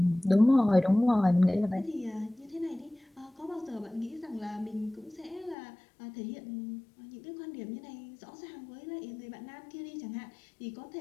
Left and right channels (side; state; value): right; drops out; at 5.6 s